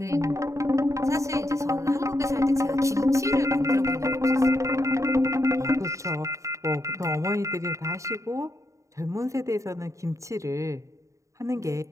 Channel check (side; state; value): left; late; 0.15 ms